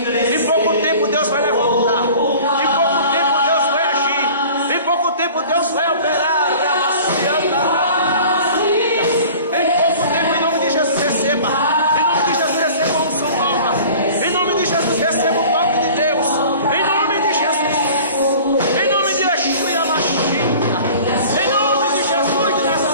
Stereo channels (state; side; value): inverted; both; correlation -0.44